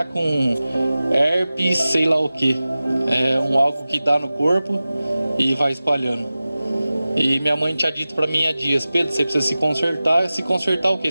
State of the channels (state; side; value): inverted; both; correlation -0.96